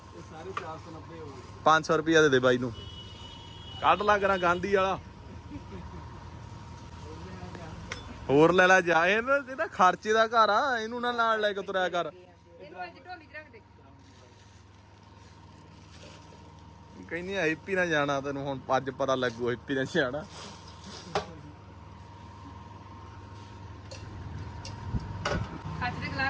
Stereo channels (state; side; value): identical; both; correlation 1.00